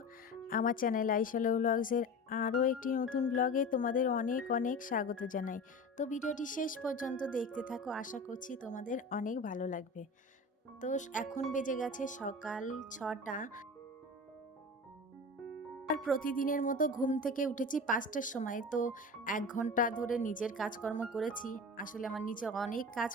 আমার চ্যানেল আইশালো ব্লগসের আরও একটি নতুন ব্লগে তোমাদের অনেক অনেক স্বাগত জানাই। তো ভিডিওটি শেষ পর্যন্ত দেখতে থাকো, আশা করছি তোমাদের অনেক ভালো লাগবে। তো এখন বেজে গেছে সকাল ৬টা। আর প্রতিদিনের মতো ঘুম থেকে উঠেছি ৫টার সময়। তো ১ ঘন্টা ধরে নিজের কাজকর্ম করেছি। আসলে আমার নিচে অনেক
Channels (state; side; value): normal; both; correlation 0.32